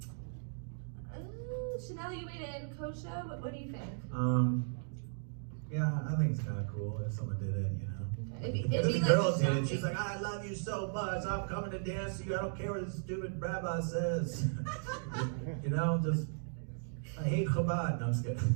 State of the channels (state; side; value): silent; left; digital silence